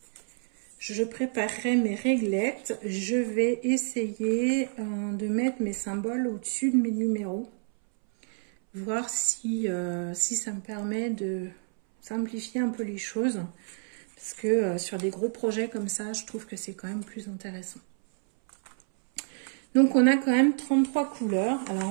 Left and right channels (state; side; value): silent; left; 59 dB below the other